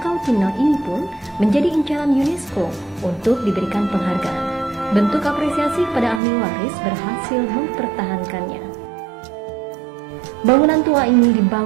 Pinang ini pun menjadi incaran UNESCO untuk diberikan penghargaan. Bentuk apresiasi kepada ahli waris berhasil mempertahankannya. Bangunan tua ini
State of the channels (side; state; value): left; drops out; at 6.2 s